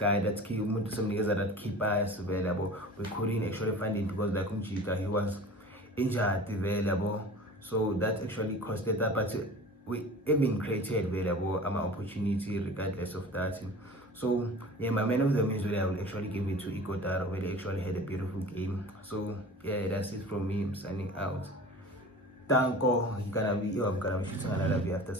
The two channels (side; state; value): both; normal; correlation 0.40